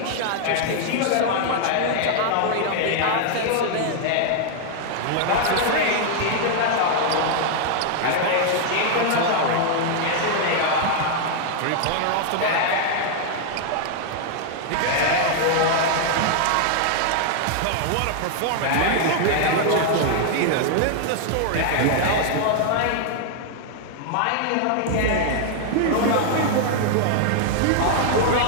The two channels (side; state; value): both; different; correlation 0.00